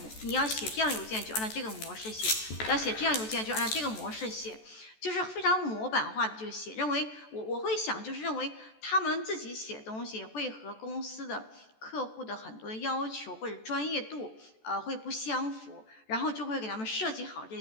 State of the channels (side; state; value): right; late; 14 ms